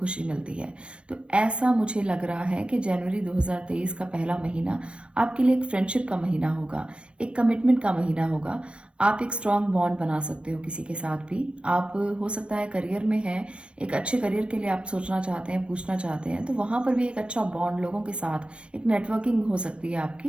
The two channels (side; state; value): left; late; 0.059 ms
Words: मिलती है। तो ऐसा मुझे लग रहा है कि जनवरी 2023 का पहला महीना आपके लिए एक फ्रेंडशिप का महीना होगा, एक कमिटमेंट का महीना होगा। आप एक स्ट्रॉन्ग बॉन्ड बना सकते हो किसी के साथ भी। आप हो सकता है करियर में है, एक अच्छे करियर के लिए आप सोचना चाहते हैं, पूछना चाहते हैं, तो वहां पर भी एक अच्छा बॉन्ड लोगों के साथ एक नेटवर्किंग हो सकती है